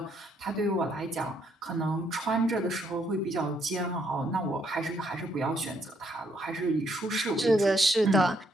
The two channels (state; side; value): normal; both; correlation 0.72